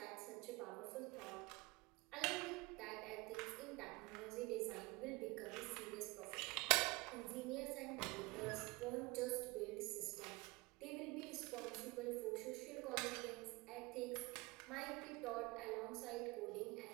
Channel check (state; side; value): quieter; left; 24.1 dB